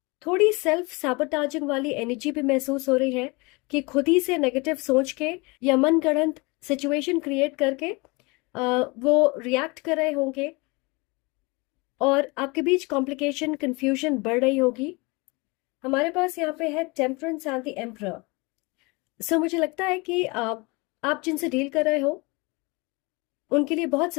थोड़ी सेल्फ सैबोटाजिंग वाली एनर्जी भी महसूस हो रही है कि खुद ही से नेगेटिव सोच के या मन गढ़ंत सिचुएशन क्रिएट करके वो रिएक्ट कर रहे होंगे, और आपके बीच कॉम्प्लिकेशन कंफ्यूजन बढ़ रही होगी। हमारे पास यहाँ पे है टेम्परेंस एंड द एम्परर। सो मुझे लगता है कि आप जिनसे डील कर रहे हो उनके लिए बहुत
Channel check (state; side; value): quieter; right; 26.8 dB